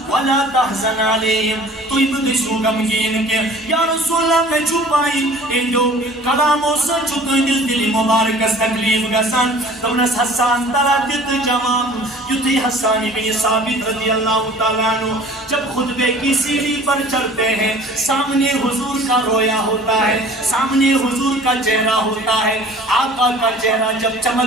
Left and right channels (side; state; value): both; normal; correlation 0.47